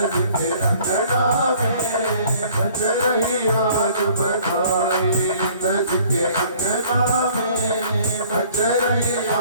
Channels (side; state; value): both; inverted; correlation -0.55